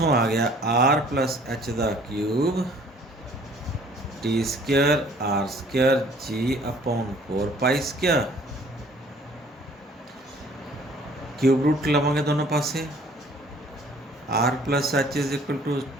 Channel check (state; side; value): normal; both; correlation 0.55